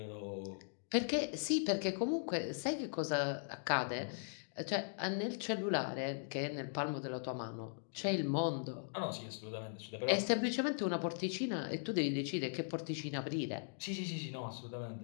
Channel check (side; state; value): right; silent; digital silence